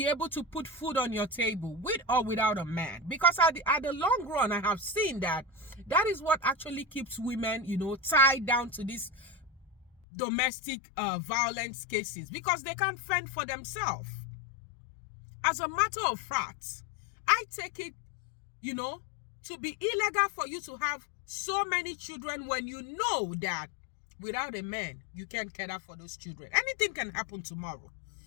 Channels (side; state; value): right; drops out; at 9.9 s